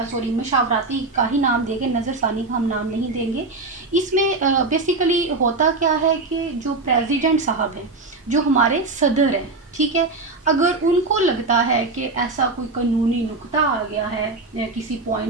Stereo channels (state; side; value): quieter; left; 3.5 dB